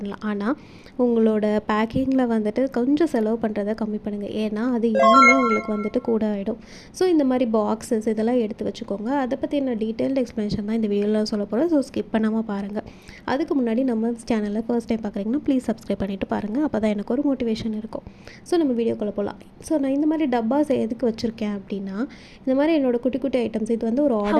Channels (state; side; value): identical; both; correlation 1.00